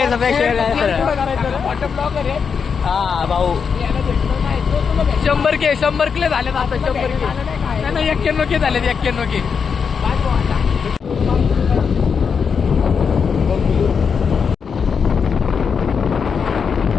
करायचं मोठं ब्लॉगर आहे हा भाऊ याला भेटलं नाही तो तुला भेटलं. 100 के झाले आता 100 के नाही 91 के झाले 91 के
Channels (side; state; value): right; quieter; 6.2 dB